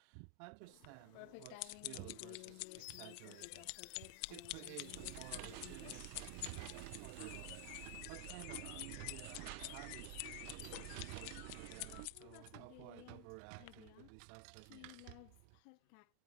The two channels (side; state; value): both; different; correlation 0.00